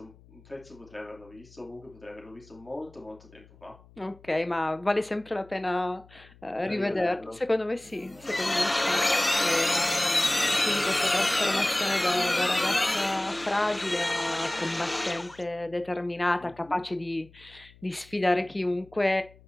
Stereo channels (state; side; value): noise; left; hum, 25 dB below the sound